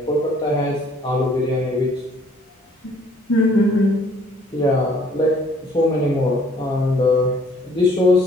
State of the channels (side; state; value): both; normal; correlation 0.59